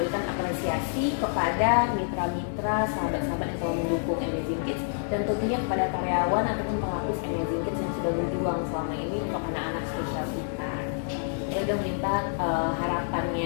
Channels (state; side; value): silent; right; digital silence